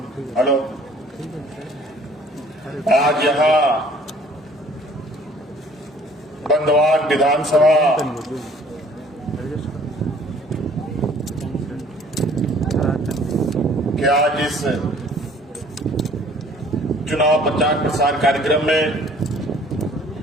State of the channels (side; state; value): both; normal; correlation 0.55